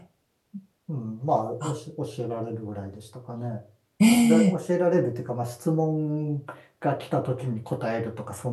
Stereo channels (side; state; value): both; identical; correlation 1.00